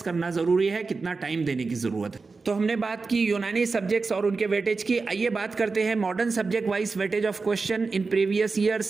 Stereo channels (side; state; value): left; quieter; 4.2 dB